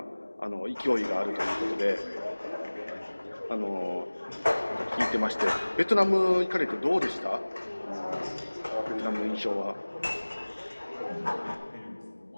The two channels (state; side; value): inverted; both; correlation -1.00